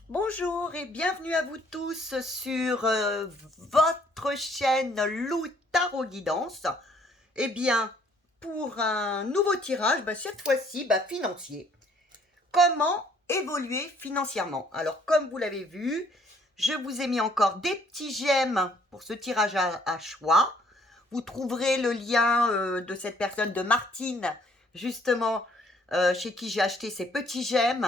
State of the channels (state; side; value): normal; both; correlation 0.63